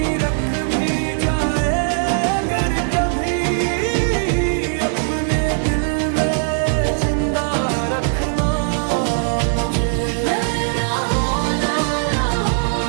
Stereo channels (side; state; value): left; silent; digital silence